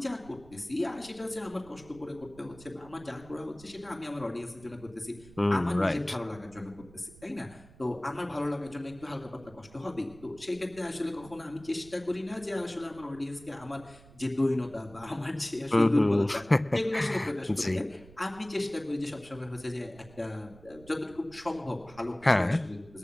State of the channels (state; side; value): noise; right; rumble, 21 dB below the sound